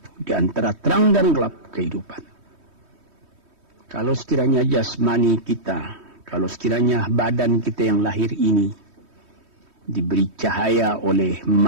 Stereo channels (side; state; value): left; late; 3.1 ms